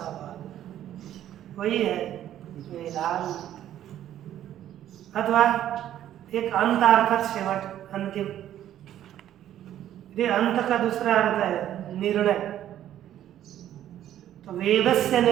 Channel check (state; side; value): quieter; left; 11.7 dB